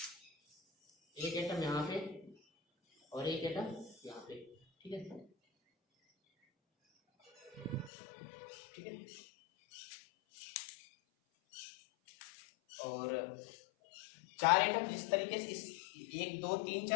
एक एटम यहाँ पे और एक एटम यहाँ पे। ठीक है, ठीक है, और 4 एटम जिस तरीके से इस 1 2 3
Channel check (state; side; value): drops out; right; at 7.9 s